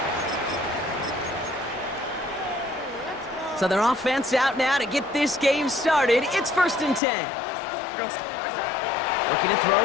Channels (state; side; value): drops out; right; at 7.0 s